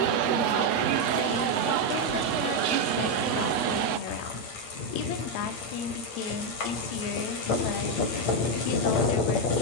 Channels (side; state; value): right; late; 8.7 ms